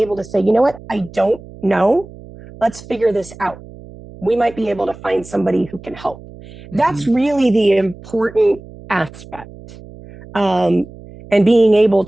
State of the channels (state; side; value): noise; right; hum, 18 dB below the sound